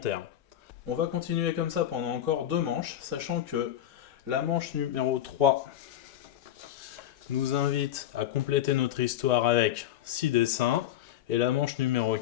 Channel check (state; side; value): quieter; right; 11.9 dB